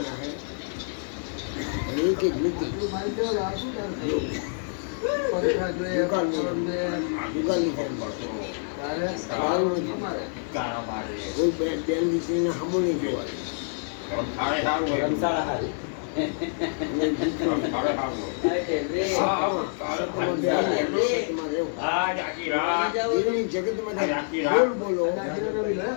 जगत में बोलो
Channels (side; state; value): right; silent; digital silence